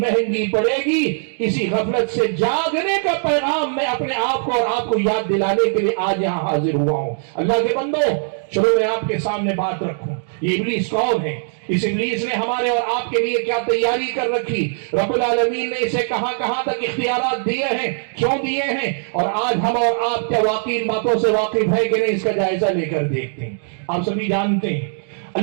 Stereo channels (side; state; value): left; silent; digital silence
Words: پڑے گی۔ اسی غفلت سے جاگنے کا پیغام میں اپنے آپ کو اور آپ کو یاد دلانے کے لیے آج یہاں حاضر ہوا ہوں۔ اللہ کے بندو، چلو میں آپ کے سامنے بات رکھوں، یہ ابلیس کون ہے؟ اس ابلیس نے ہمارے اور آپ کے لیے کیا تیاری کر رکھی؟ رب العالمین نے اسے کہاں کہاں تک اختیارات دیے ہیں، کیوں دیے ہیں، اور آج ہم اور آپ کیا واقعی ان باتوں سے واقف ہے کہ نہیں، اس کا جائزہ لے کر دیکھتے ہیں۔ آپ سبھی جانتے ہیں